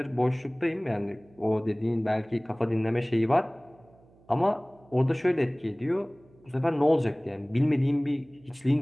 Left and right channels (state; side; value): noise; right; hum, 29 dB below the sound